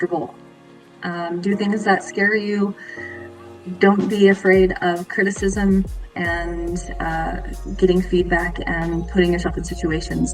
Do things that scare you. Don't be afraid of criticism and getting feedback and putting yourself in situations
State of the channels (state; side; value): identical; both; correlation 1.00